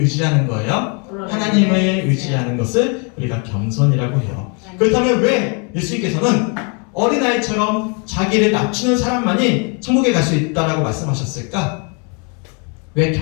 거예요? 하나님을 의지하는 것을 우리가 겸손이라고 해요. 그렇다면 왜 예수님께서는 어린아이처럼 자기를 낮추는 사람만이 천국에 갈 수 있다라고 말씀하셨을까? 왜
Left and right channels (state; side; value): quieter; right; 35.9 dB